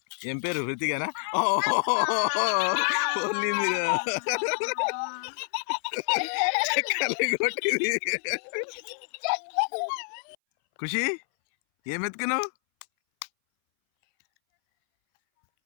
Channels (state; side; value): silent; right; 60 dB below the other